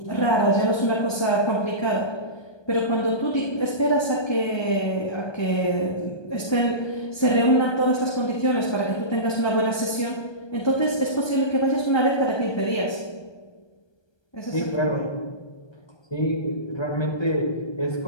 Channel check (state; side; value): late; right; 1.3 ms